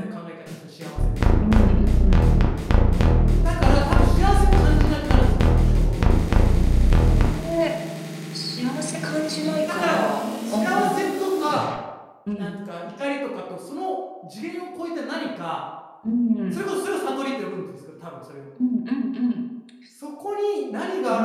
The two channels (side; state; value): both; identical; correlation 1.00